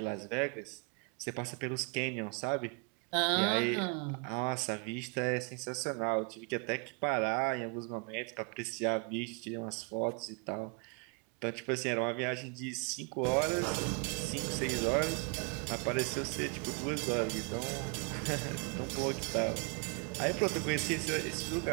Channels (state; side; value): quieter; left; 33.7 dB